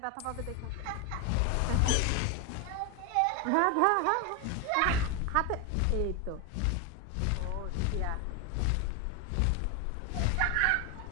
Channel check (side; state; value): both; different; correlation 0.01